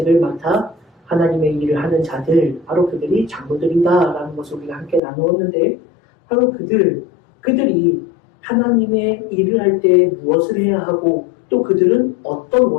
맡아 하나님의 일을 하는 자들, 바로 그들이 장로들이다라는 것을 우리가 함께 나누었는데 바로 그들이 하나님의 일을 할 때 무엇을 해야 하고 또 그들은 어떤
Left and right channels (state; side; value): drops out; right; at 5.0 s